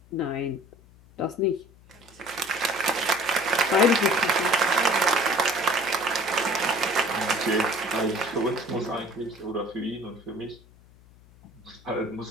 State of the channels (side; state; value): left; noise; hum, 25 dB below the sound